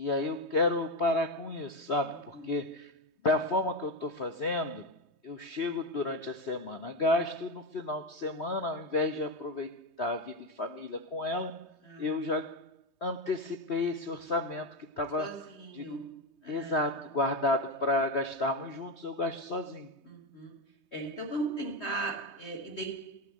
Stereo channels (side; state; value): right; late; 3.2 ms